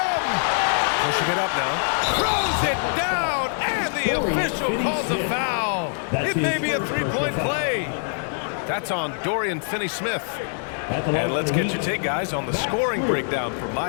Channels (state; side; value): silent; right; 59 dB below the other